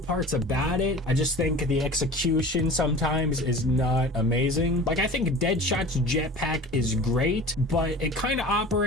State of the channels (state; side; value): normal; both; correlation 0.39